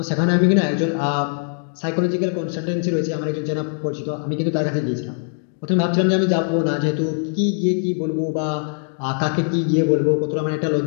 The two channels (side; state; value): right; silent; 61 dB below the other